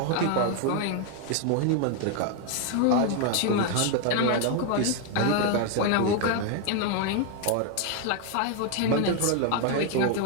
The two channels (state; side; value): different; both; correlation 0.01